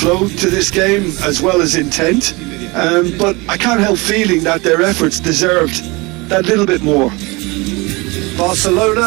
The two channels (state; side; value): quieter; left; 25.2 dB